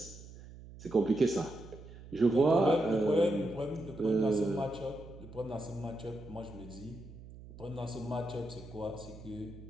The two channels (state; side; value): noise; right; hum, 16 dB below the sound